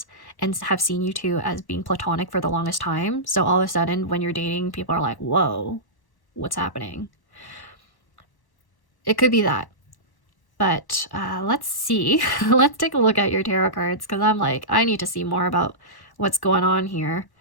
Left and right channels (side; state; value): right; late; 1.1 ms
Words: and have seen you two as being platonic for the longest time. So all of a sudden when you're dating, people are like, whoa, what's happening? It could be that. But let's see. Let's take a look at your tarot cards, because I'm like, I need to see more about what's going on here.